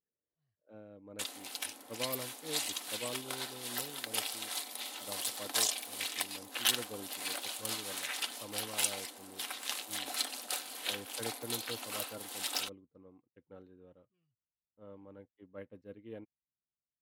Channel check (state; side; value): identical; both; correlation 1.00